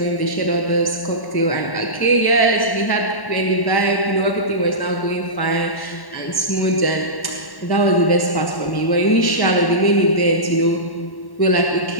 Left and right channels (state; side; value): late; right; 1.1 ms